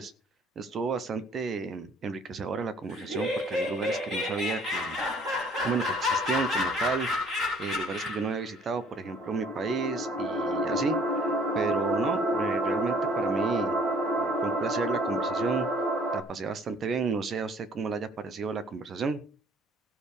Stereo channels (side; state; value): both; normal; correlation 0.57